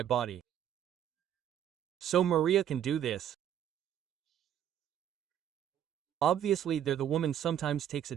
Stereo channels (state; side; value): quieter; left; 10.1 dB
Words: body. So Maria can do this. Obviously the woman sometimes takes